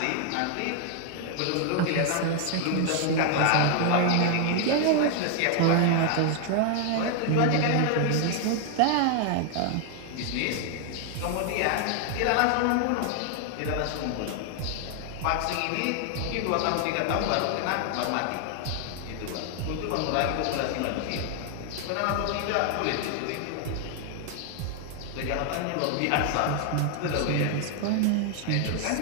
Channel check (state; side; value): different; both; correlation 0.00